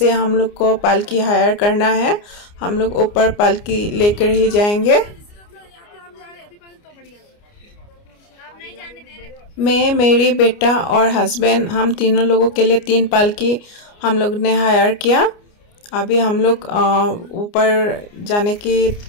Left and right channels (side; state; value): right; late; 29 ms